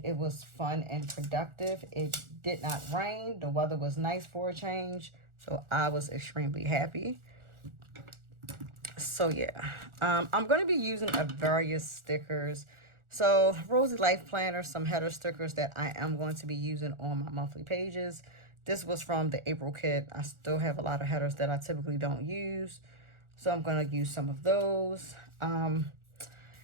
it was fun and productive. It did not rain. The weather was nice for a change, so I was extremely happy. So yeah, I'm going to be using various stickers. So Rosy Life Planner, some header stickers that I am going to be using on my monthly pages. This was from the April kit. I still have a lot of headers that I typically don't use, so I'm going to use some of those. And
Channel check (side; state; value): left; late; 1.4 ms